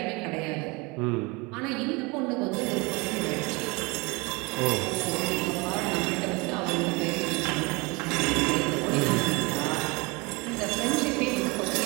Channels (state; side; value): quieter; left; 26.6 dB